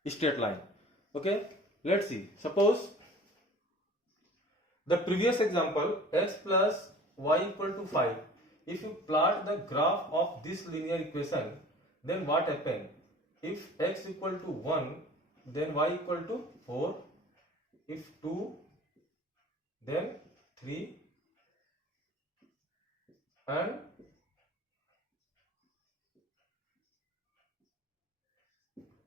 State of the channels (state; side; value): normal; both; correlation 0.44